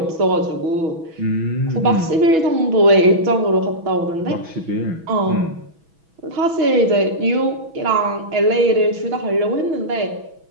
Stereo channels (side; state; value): left; late; 6.1 ms